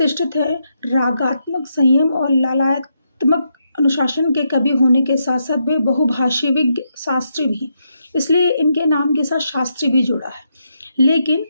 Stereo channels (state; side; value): inverted; both; correlation -0.81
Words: है। रागात्मक संयम और ललात्मक अनुशासन के कवि होने के साथ साथ वे बहुभाषी विज्ञ शास्त्री भी, इसलिए इनके नाम के साथ शास्त्री भी जुड़ा है। लेकिन